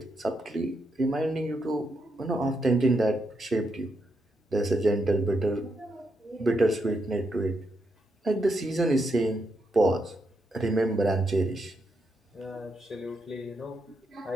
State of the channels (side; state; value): both; normal; correlation 0.81